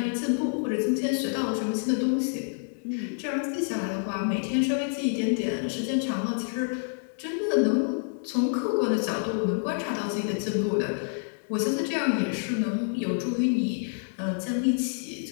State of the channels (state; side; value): silent; right; digital silence